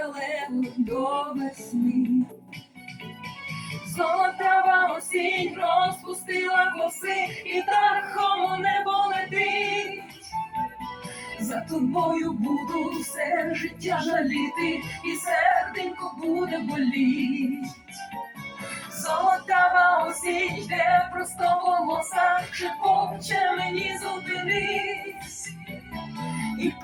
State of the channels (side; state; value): both; identical; correlation 1.00